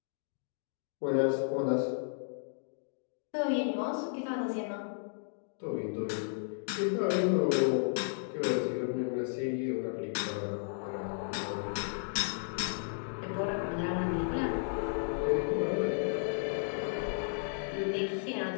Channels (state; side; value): silent; right; digital silence